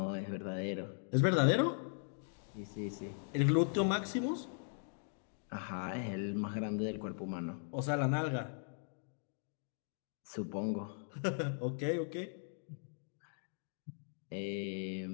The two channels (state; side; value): silent; right; digital silence